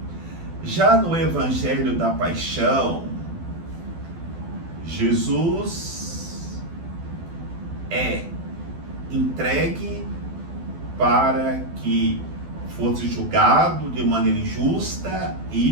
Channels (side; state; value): left; late; 12 ms